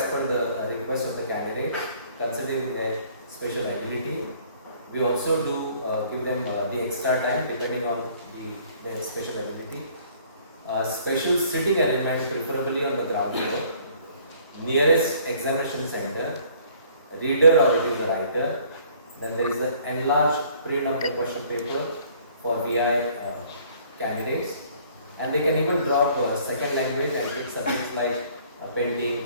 per the request of the candidate, considering their special ability. We also do give them the extra time depending on their special ability. Special sitting arrangement, preferably on the ground floor. Nearest examination center. Reader or it is a writer. Then there is the enlarged print of the question paper for VI candidates. And they can even drop second language and take subjects like painting,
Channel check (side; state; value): both; inverted; correlation -0.57